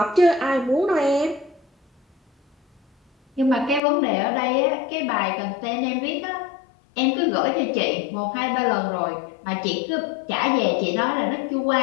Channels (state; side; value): drops out; right; at 3.8 s